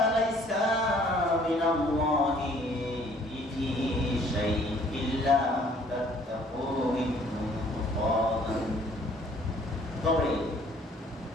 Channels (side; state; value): both; normal; correlation 0.58